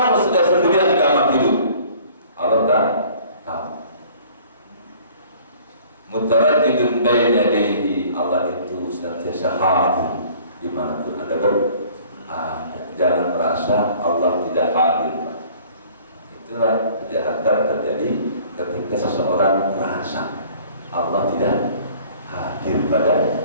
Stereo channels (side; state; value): both; inverted; correlation -0.52